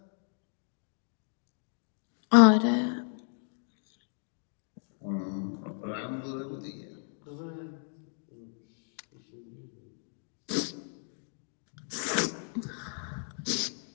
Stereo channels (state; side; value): silent; right; 55 dB below the other